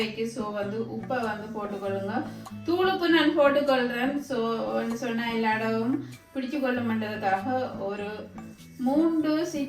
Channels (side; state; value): both; identical; correlation 1.00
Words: ஸோ வந்து உப்பை வந்து போட்டுக்கொள்ளுங்க. தூளுப்பு நான் போட்டுக்கொள்கிறேன். ஸோ சொன்னால் எல்லா இடமும் பிடிச்சு கொள்ளுமன்றதுக்காக ஒரு 3